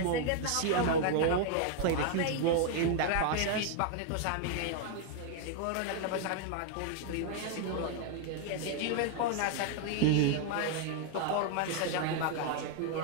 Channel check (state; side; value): different; both; correlation 0.00